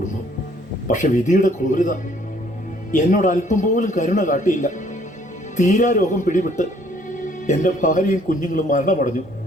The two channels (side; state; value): both; normal; correlation 0.62